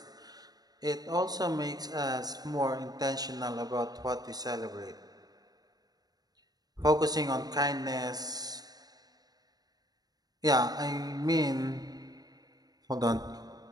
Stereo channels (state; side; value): late; left; 0.19 ms